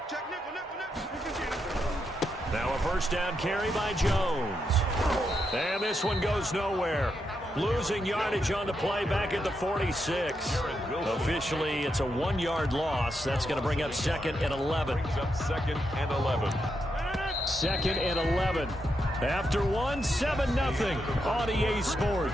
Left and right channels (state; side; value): normal; both; correlation 0.83